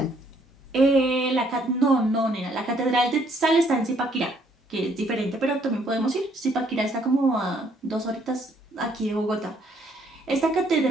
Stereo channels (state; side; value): normal; both; correlation 0.66